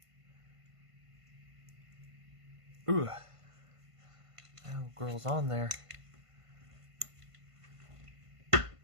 Ooh. Oh, girl's on there.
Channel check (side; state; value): left; late; 1.5 ms